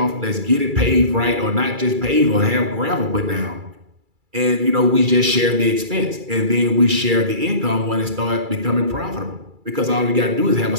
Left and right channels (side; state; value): left; late; 2.3 ms